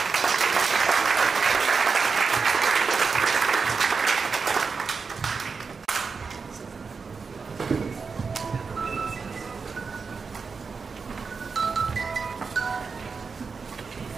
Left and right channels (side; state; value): left; quieter; 5.1 dB